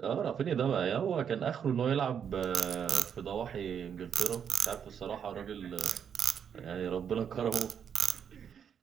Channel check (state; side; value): quieter; left; 7.9 dB